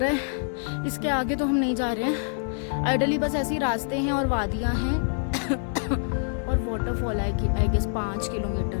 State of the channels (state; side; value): silent; right; 61 dB below the other